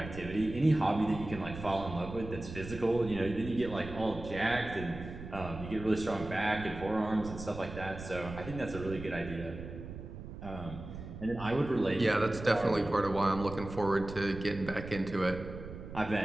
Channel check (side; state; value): right; noise; rumble, 11 dB below the sound